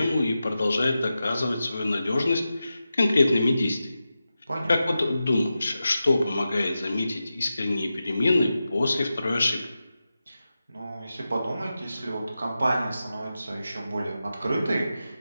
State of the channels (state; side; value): inverted; both; correlation -0.92